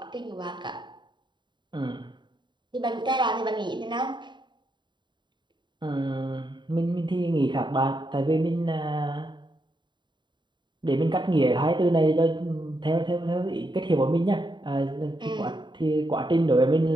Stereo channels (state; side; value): late; left; 0.22 ms